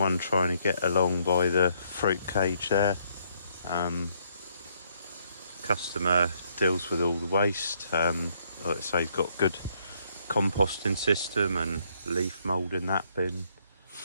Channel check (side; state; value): both; inverted; correlation -0.71